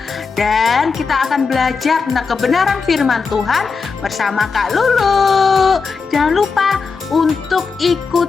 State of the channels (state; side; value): quieter; right; 5.0 dB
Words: Dan kita akan belajar tentang kebenaran firman Tuhan bersama Kak Lulu. Jangan lupa untuk